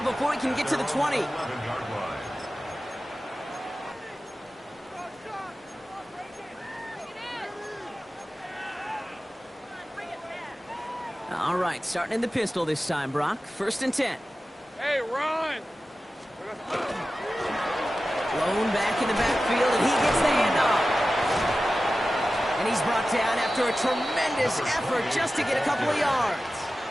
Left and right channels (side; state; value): both; normal; correlation 0.94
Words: before he can get to the 20. All right, starting in the pistol this time, Brock. 1st and 10. Hey, run. Blown back in the backfield, and he gets the handoff. And he's brought down after a tremendous effort just to get a couple of yards.